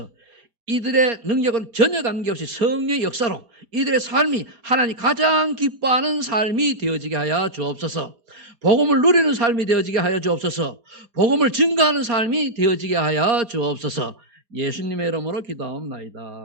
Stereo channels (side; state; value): left; late; 4.9 ms